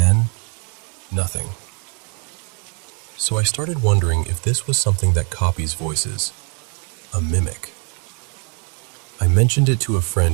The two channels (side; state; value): left; quieter; 36.4 dB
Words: nothing. So I started wondering if this was something that copies voices, a mimic. I mentioned it to a